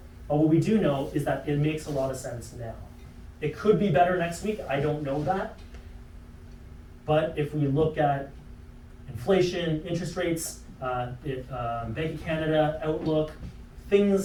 But what we do know is that it makes a lot of sense now. It could be better next week. I don't know that. But if we look at inflation, interest rates, Bank of Canada, outlook,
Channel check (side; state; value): both; identical; correlation 1.00